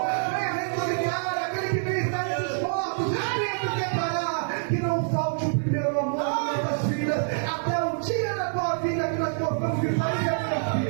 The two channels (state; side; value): silent; left; 59 dB below the other